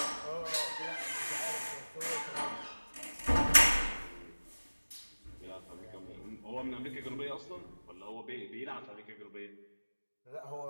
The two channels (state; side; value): inverted; both; correlation -1.00